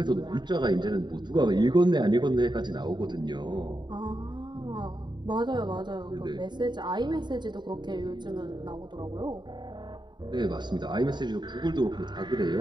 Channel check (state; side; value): late; left; 0.22 ms